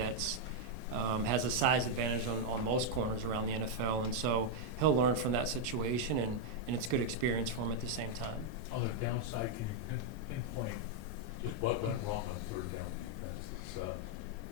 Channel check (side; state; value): both; normal; correlation -0.01